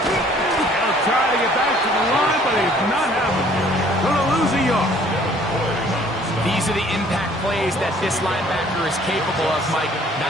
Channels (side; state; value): both; normal; correlation 0.57